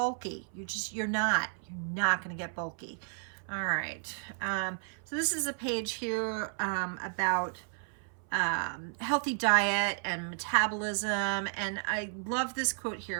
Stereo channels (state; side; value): silent; left; 56 dB below the other